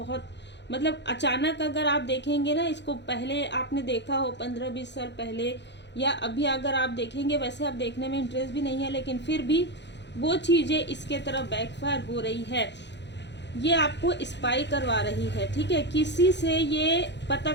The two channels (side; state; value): right; late; 0.51 ms